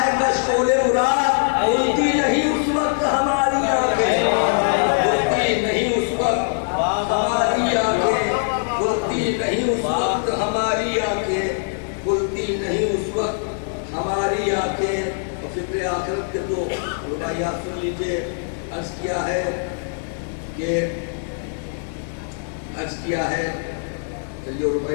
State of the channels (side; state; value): right; silent; digital silence